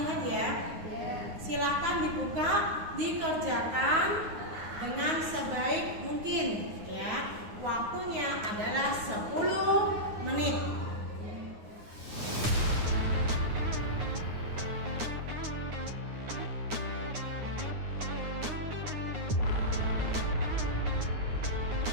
ya. Silakan dibuka, dikerjakan dengan sebaik mungkin ya. Waktunya adalah 10 menit.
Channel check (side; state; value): left; late; 9.6 ms